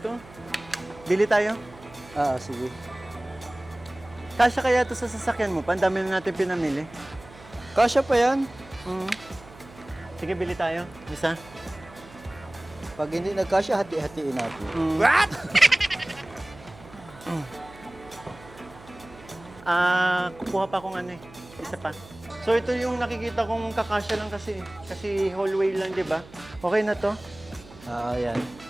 Bili tayo. Sige. Kasya kaya ito sa sasakyan mo pa? Ang dami na natin pinamili. Kasya pa yan. Sige, bili tayo. Isa. Pag hindi nagkasya, hati-hatiin natin. Kukuha pa akong ano eh. Isa pa. So ito yung nakikita kong kakasya lang kasi. Kasi hallway lang, di ba? Okay na to. Yan.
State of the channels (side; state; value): right; noise; hum, 20 dB below the sound